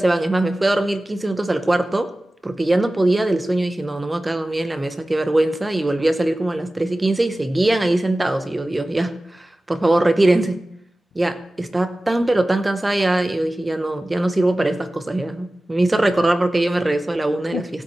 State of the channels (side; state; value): both; normal; correlation 0.96